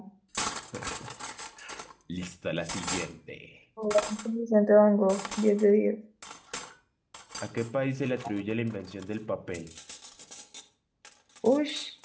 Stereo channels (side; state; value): both; identical; correlation 1.00